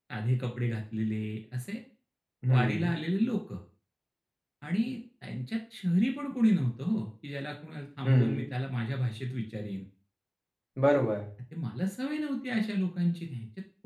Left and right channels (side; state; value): both; identical; correlation 1.00